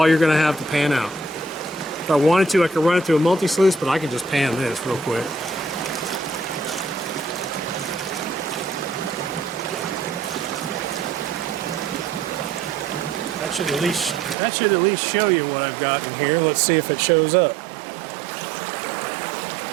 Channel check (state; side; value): drops out; left; at 14.4 s